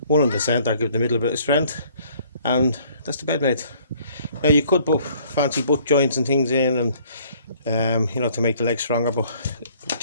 one in the centre, give the middle a bit of strength, and that's the bed made. Now you could put fancy butt joints and things in, and you know, to make the legs stronger, but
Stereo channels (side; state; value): both; inverted; correlation -0.59